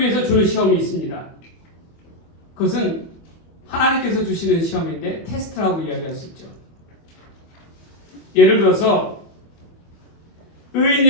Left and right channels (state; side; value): late; right; 25 ms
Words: 주는 시험이 있습니다. 그것은 하나님께서 주시는 시험인데 테스트라고 이야기할 수 있죠. 예를 들어서